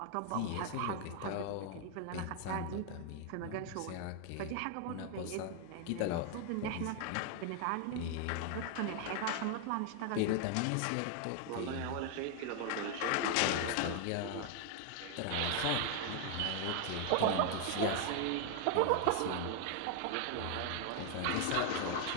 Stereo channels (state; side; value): different; both; correlation 0.00